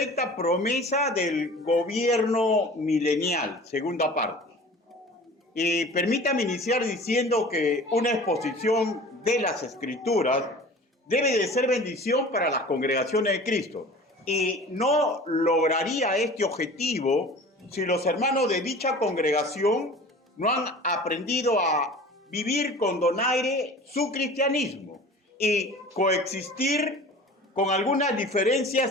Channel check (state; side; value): normal; both; correlation 0.42